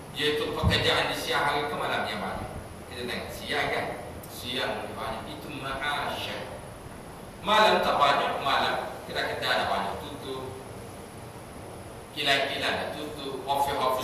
yaitu pekerjaan di siang hari ke malam yang banyak. Kita tengok siang kan, siang banyak, itu ma'asya. Malam tak banyak, malam kita ada banyak tutup, kilang-kilang ada tutup,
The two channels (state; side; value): identical; both; correlation 1.00